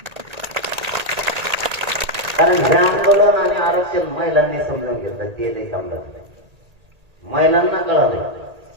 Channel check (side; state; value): left; late; 1.8 ms